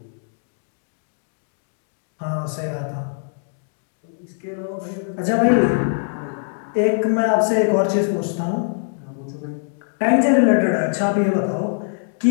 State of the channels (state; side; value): silent; right; digital silence